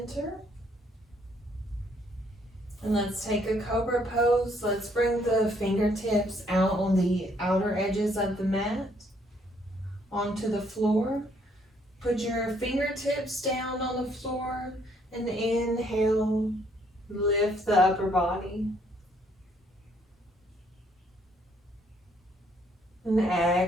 And let's take a cobra pose. Let's bring the fingertips out on the outer edges of the mat, onto the floor. Put your fingertips down on the floor and inhale, lift the upper body. And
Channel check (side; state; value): both; normal; correlation 0.67